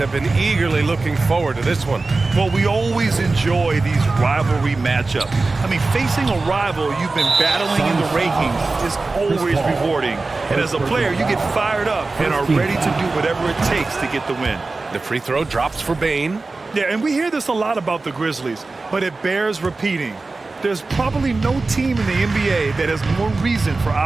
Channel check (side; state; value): left; quieter; 3.6 dB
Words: been eagerly looking forward to this one. Well, we always enjoy these rivalry matchups. I mean, facing a rival you've been battling in the rankings is always rewarding. And as a player, you get fired up and are ready to do whatever it takes to get the win. The free throw drops for Bain. Yeah, and we hear this a lot about the Grizzlies, but it bears repeating. There's probably no team in the NBA that has more reason for